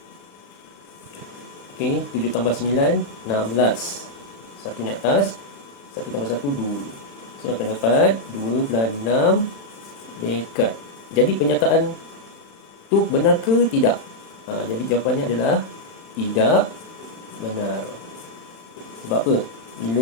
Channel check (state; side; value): late; right; 35 ms